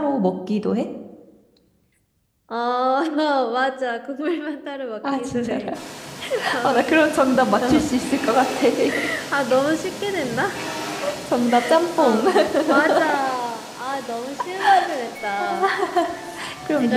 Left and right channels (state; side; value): identical; both; correlation 1.00